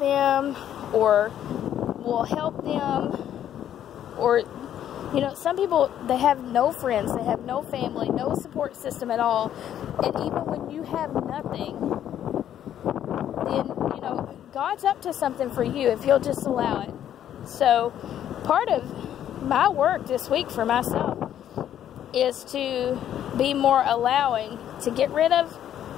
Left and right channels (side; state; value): right; quieter; 10.6 dB